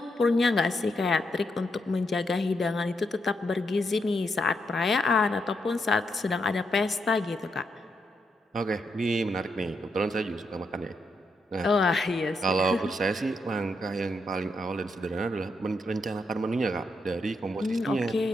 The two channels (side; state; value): both; normal; correlation 0.81